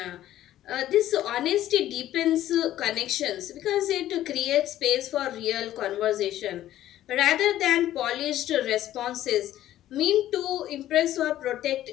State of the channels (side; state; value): right; quieter; 13.2 dB